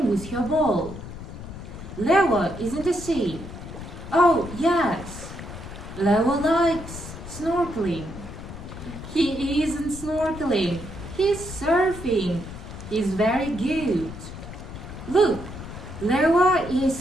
with her ball. Leo is in the sea. Oh, yes. Leo likes snorkeling. He isn't snorkeling. He's surfing. He's very good. Look, Leo is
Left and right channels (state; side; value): noise; left; rumble, 11 dB below the sound